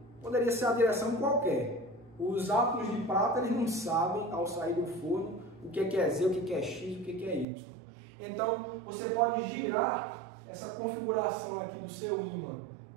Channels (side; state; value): left; drops out; at 7.5 s